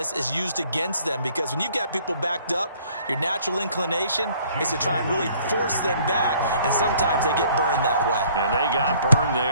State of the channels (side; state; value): both; inverted; correlation -0.59